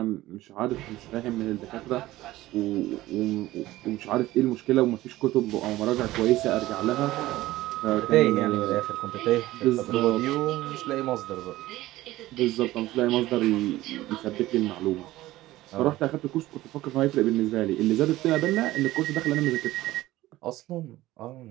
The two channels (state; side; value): quieter; left; 16.6 dB